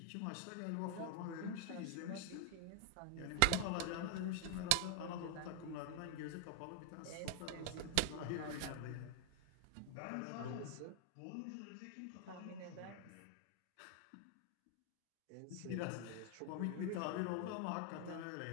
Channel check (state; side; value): different; both; correlation 0.00